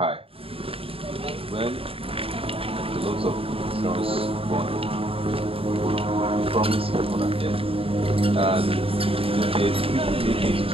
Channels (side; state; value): left; late; 0.27 ms